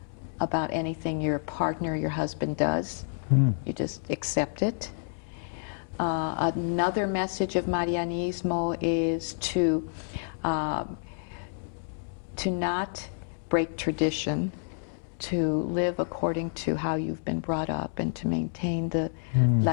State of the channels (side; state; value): right; silent; digital silence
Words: about anything your partner, your husband does. You just accept it. Another message of Marianismo is to not break tradition, to live according to how you've been brought up, and to maintain the